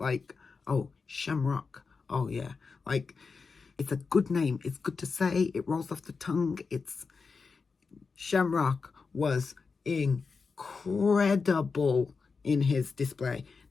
oh, Shamrock. Oh yeah. Like, it's a good name. It's good to say. It rolls off the tongue. Shamrock was incredible in his display.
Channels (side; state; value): right; quieter; 4.8 dB